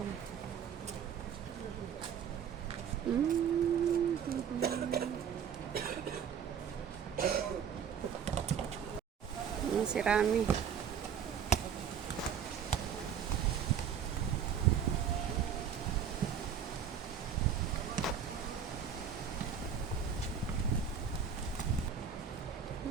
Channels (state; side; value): quieter; left; 7.7 dB